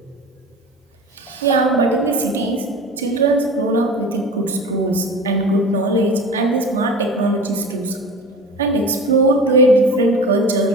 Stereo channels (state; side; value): normal; both; correlation 0.34